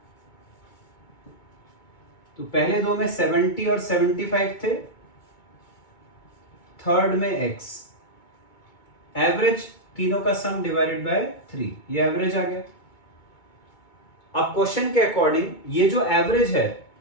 तो पहले दो में 70 और 75 थे, थर्ड में x। एवरेज तीनों का सम डिवाइडेड बाय 3, ये एवरेज आ गया। अब क्वेश्चन के अकॉर्डिंग ये जो एवरेज है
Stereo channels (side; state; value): right; late; 2.2 ms